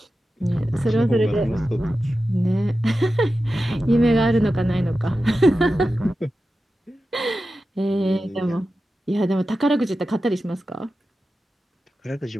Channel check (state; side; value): normal; both; correlation 0.93